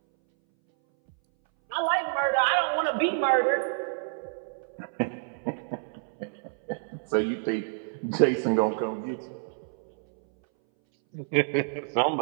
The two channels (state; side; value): silent; left; 59 dB below the other